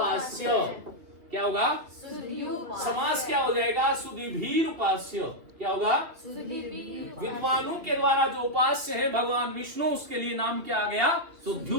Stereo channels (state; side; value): late; left; 2.9 ms